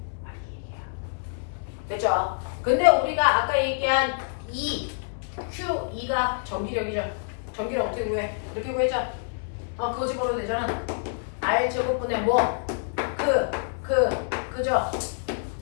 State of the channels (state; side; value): silent; right; 60 dB below the other